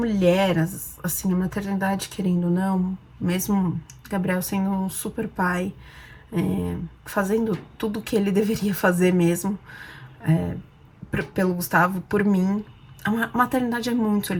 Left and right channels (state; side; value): identical; both; correlation 1.00